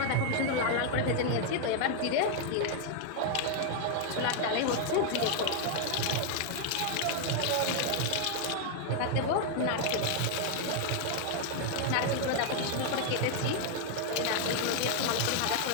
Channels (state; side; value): different; both; correlation 0.00